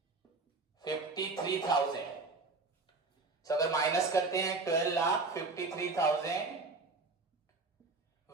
अगर माइनस करते हैं 12,53,000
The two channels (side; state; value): left; quieter; 3.8 dB